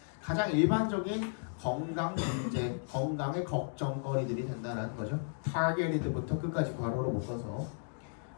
가장 일반적인 건강 문제, 건강의 걱정거리들이 된다는 거죠. targeted부터 끝까지 괄호로 묶어서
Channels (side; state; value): right; silent; digital silence